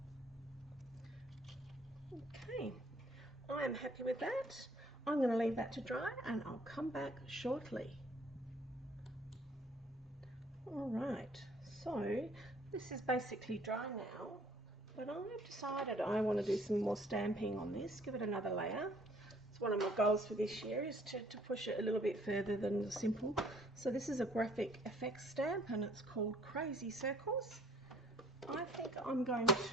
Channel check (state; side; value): normal; both; correlation 0.59